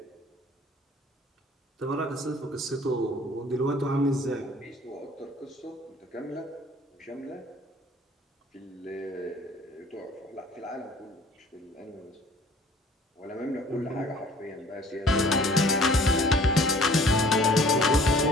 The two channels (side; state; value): both; normal; correlation 0.52